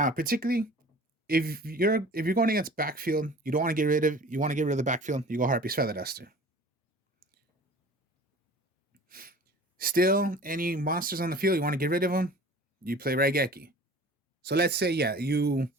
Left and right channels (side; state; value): both; normal; correlation 0.44